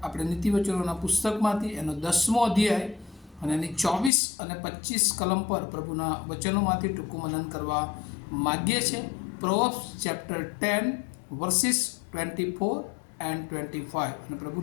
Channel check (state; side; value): drops out; right; at 4.1 s